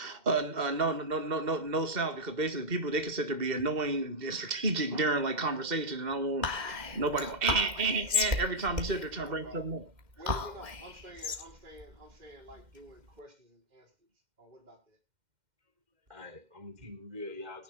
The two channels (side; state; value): left; late; 2.1 ms